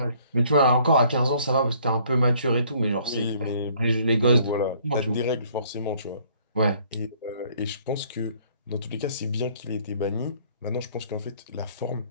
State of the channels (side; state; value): both; inverted; correlation -0.60